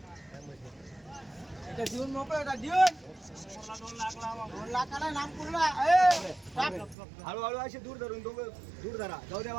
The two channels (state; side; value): drops out; left; at 7.0 s